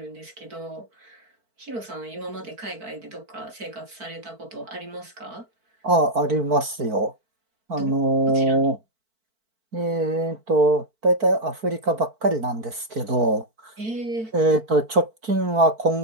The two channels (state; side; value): late; left; 4.5 ms